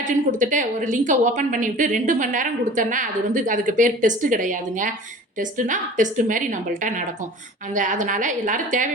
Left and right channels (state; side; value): normal; both; correlation 0.42